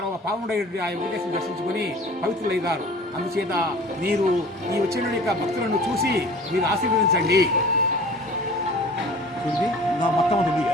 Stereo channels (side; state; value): both; normal; correlation 0.44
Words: పావనుడై ఆ వెంకటేశ్వరుని దర్శించుకొని పవిత్రులైనారు. అందుచేత మీరు ఈ వచ్చిన యొక్క భక్తులను చూసి మీరు ఆశీర్వదించండి. మొత్తం ఉంది